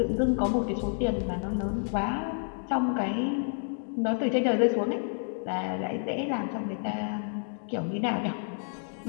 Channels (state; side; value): silent; right; digital silence